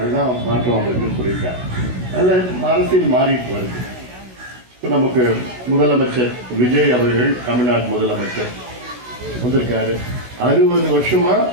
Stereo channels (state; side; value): late; left; 16 ms